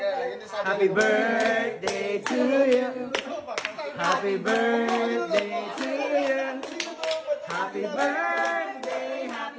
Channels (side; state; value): both; identical; correlation 1.00